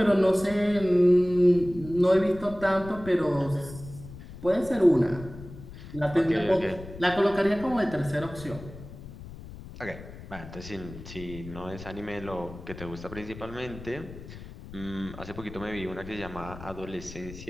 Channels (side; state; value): left; noise; rumble, 14 dB below the sound